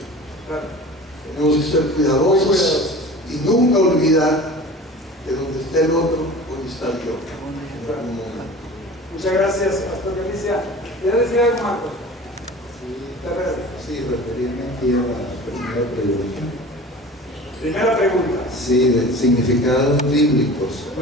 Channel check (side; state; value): both; normal; correlation 0.39